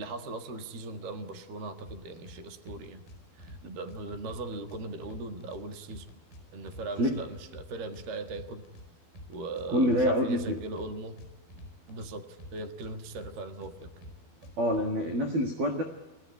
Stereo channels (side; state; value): left; late; 13 ms